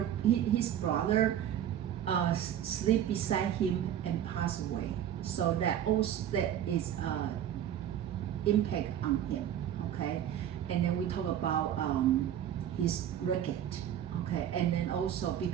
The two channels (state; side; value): quieter; left; 10.5 dB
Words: brother sleep beside him and pass away. So that is impact on him, okay? And then we talk about his ricket, okay? And then also